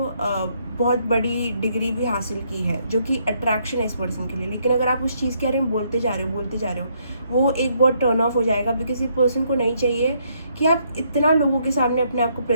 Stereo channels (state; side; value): inverted; both; correlation -0.72